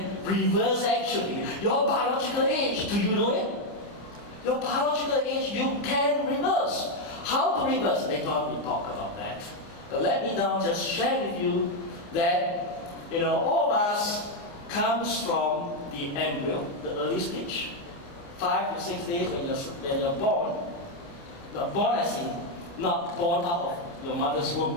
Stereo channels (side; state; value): right; late; 29 ms